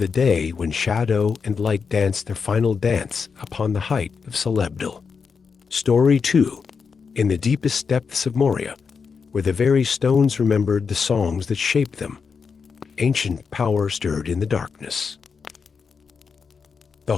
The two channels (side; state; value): right; quieter; 5.6 dB